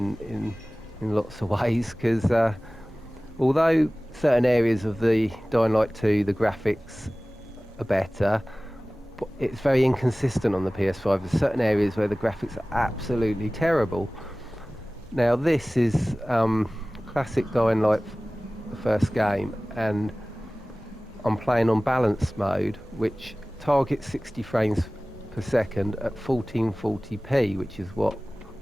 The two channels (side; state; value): both; normal; correlation 0.98